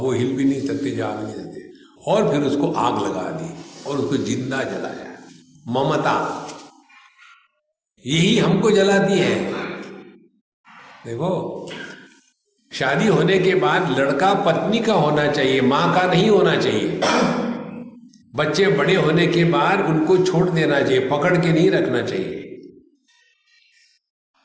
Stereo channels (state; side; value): identical; both; correlation 1.00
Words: हिल भी नहीं सकते, जा भी नहीं सकते। और फिर उसको आग लगा दी और उसको जिंदा जलाया। ममता यही हमको जलाती है। देखो, शादी होने के बाद लड़का पत्नी का होना चाहिए, मां का नहीं होना चाहिए। बच्चे बड़े होने के बाद उनको छोड़ देना चाहिए, पकड़ के नहीं रखना चाहिए।